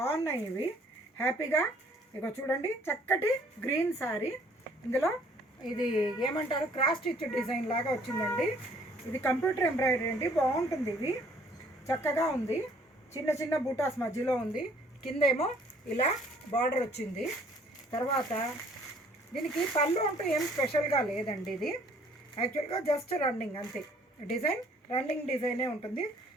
ఇవి. హ్యాపీగా ఇక చూడండి, చక్కటి గ్రీన్ శారీ. ఇందులో ఇది ఏమంటారు, క్రాస్ స్టిచ్ డిజైన్ లాగా వచ్చిందండి. ఇది కంప్యూటర్ ఎంబ్రాయిడరీ అండి, బాగుంటుంది. ఇది చక్కగా ఉంది. చిన్న చిన్న బూటాస్ మధ్యలో ఉంది. కిందేమో ఇలా బార్డర్ వచ్చింది. తర్వాత దీనికి పళ్ళు అంటూ ఏం స్పెషల్గా లేదండి. ఇది యాక్చువల్గా జస్ట్ రన్నింగ్ అంతే. డిజైన్ రన్నింగ్ డిజైనే ఉంటుంది.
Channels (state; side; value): normal; both; correlation 0.59